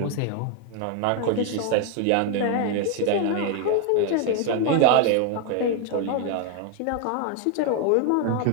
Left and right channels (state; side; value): different; both; correlation 0.01